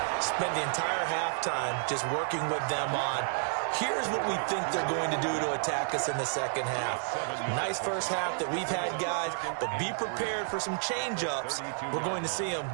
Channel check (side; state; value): left; silent; digital silence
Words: spent the entire halftime just working with them on here's what we think they're going to do to attack us in the second half. Nice first half that we've had, guys, but be prepared for some change-ups. We're going to see them